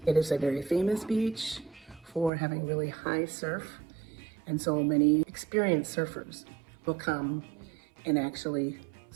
It is a very famous beach for having really high surf, and so many experienced surfers will come and actually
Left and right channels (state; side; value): drops out; left; at 2.3 s